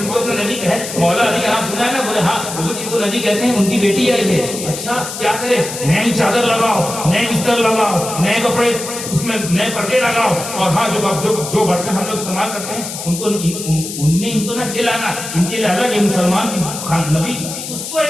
کو اپنا نبی کہے, مولا علی کا نام سنا ہے نا, بولے ہاں وہ جن کو نبی کہتے ہیں ان کی بیٹی آئی ہے. اچھا کیا کرے؟ نئی چادر لگاؤ, نئے بستر لگاؤ, نئے کپڑے اس میں نئے پردے لگاؤ, اور ہاں جو برتن ہم لوگ استعمال کرتے ہیں ان کو ان میں ان کو نہ کھلانا. ان کے لیے الگ ہے مسلمان نبی, اس کو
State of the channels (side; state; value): left; noise; hiss, 8 dB below the sound